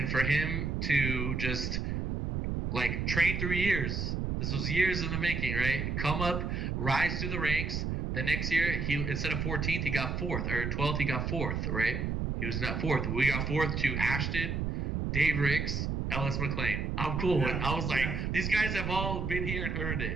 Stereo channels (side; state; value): right; noise; rumble, 1 dB below the sound